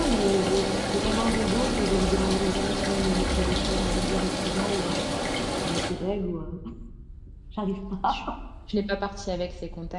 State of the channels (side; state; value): both; identical; correlation 1.00